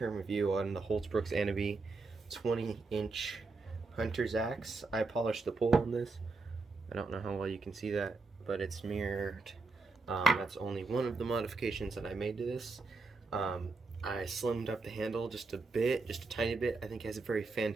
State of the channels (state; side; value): quieter; left; 3.8 dB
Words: review on the Hults Aneby 20-inch hunter's axe. I polished the pole on this. I don't know how well you can see that, but it's mirrored. That's only one of the modifications that I made to this. I slimmed up the handle just a bit, just a tiny bit. I think it has a very